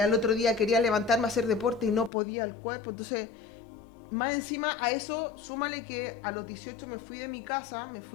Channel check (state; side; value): drops out; right; at 2.1 s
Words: otro día quería levantarme a hacer deporte y no podía el cuerpo. Entonces, más encima a eso, súmale que a los 18 me fui de mi casa, me